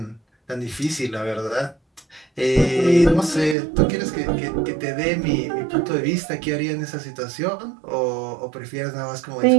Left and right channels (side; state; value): left; drops out; at 3.6 s